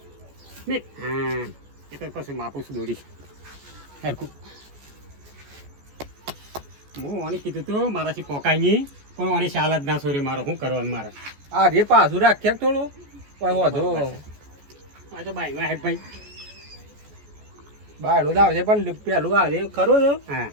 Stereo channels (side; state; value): left; late; 14 ms